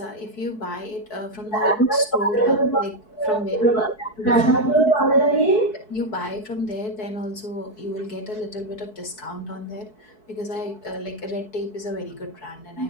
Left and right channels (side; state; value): right; late; 4.6 ms